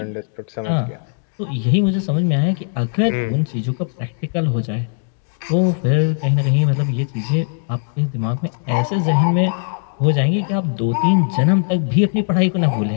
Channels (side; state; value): right; silent; digital silence